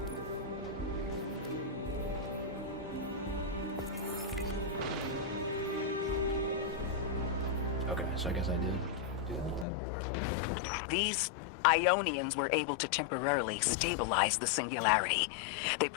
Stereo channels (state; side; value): drops out; right; at 9.7 s